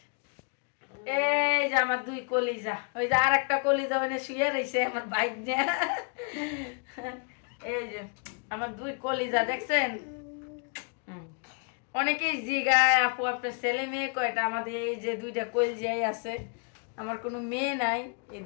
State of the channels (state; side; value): quieter; right; 39.6 dB